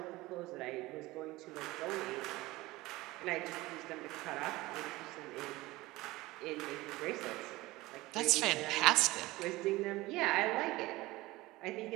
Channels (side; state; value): left; quieter; 19.6 dB